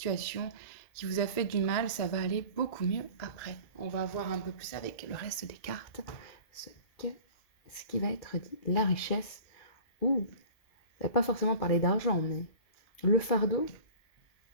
qui vous a fait du mal, ça va aller beaucoup mieux après. On va voir un peu plus avec le reste des cartes ce qui va être dit. La richesse, ou ça va pas forcément parler d'argent, mais le fardeau,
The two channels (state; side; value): late; right; 2.5 ms